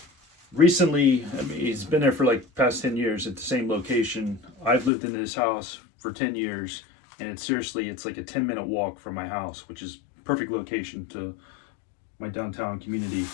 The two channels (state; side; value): drops out; right; at 4.9 s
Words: recently, I mean, it's been there for like past 10 years at the same location. I've lived in this house for 10 years and it's like a 10-minute walk from my house, which is perfect location to my downtown community.